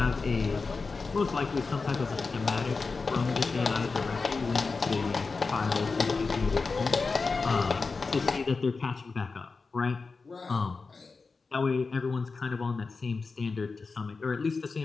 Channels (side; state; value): right; quieter; 4.3 dB